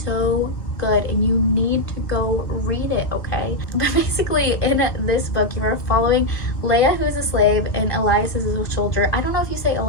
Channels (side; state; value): right; late; 1.6 ms